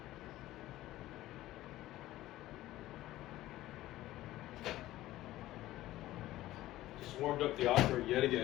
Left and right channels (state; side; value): quieter; right; 15.7 dB